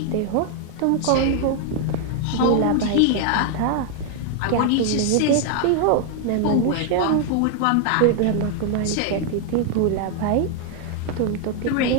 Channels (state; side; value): different; both; correlation 0.00